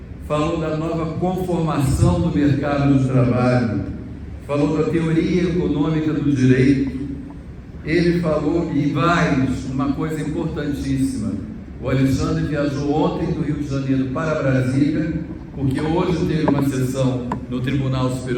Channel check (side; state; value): both; identical; correlation 1.00